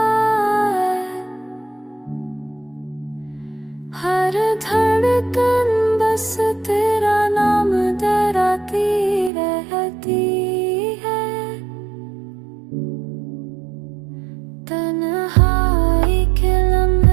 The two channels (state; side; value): drops out; left; at 9.3 s